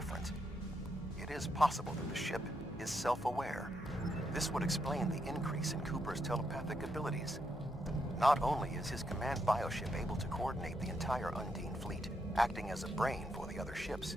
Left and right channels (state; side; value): normal; both; correlation 0.80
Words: It is possible that the ship is self-aware. This would explain the increase in Cooper's telepathic abilities. Not only is his command bioship able to coordinate the entire Undine fleet, acting as a brain for the other ships,